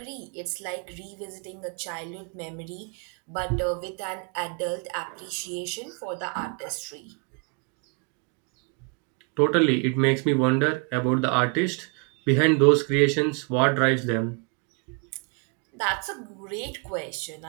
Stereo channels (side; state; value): left; quieter; 35.2 dB